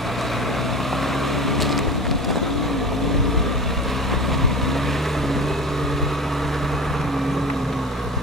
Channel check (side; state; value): both; normal; correlation 0.33